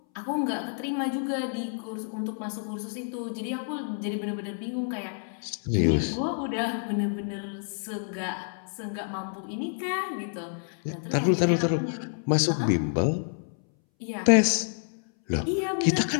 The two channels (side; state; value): right; silent; 59 dB below the other